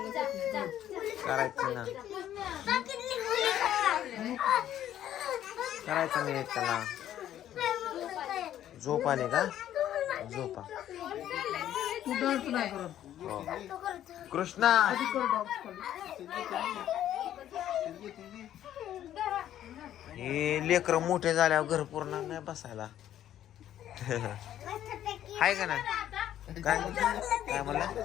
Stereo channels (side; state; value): right; quieter; 11.6 dB